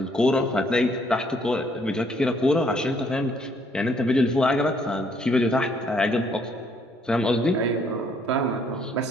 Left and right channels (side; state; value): both; normal; correlation 0.66